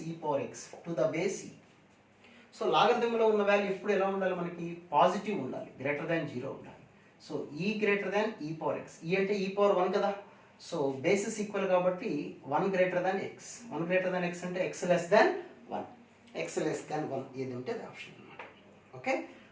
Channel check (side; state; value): both; identical; correlation 1.00